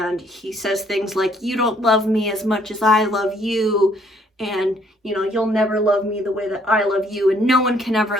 he says things like, you don't love me as much as I love you. And, you'll never love me the way that I love you. And no one can ever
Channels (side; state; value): both; normal; correlation 0.65